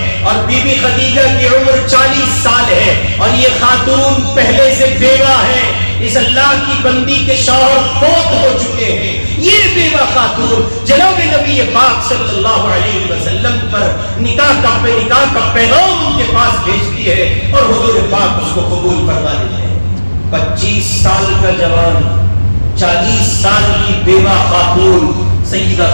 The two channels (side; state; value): both; inverted; correlation -1.00